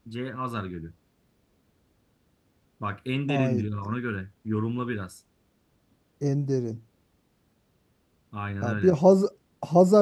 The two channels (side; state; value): both; identical; correlation 1.00